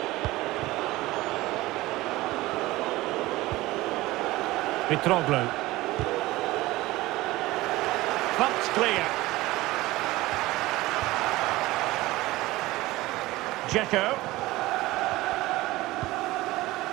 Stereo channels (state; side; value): quieter; left; 18.8 dB